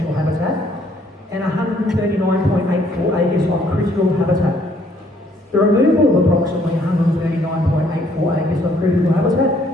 habitat and 139.84 acres of critical habitat. The removal of approximately 139.84 acres of critical habitat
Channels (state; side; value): normal; both; correlation 0.65